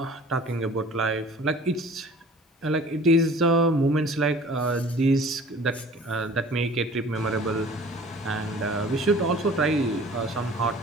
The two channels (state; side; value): normal; both; correlation 0.47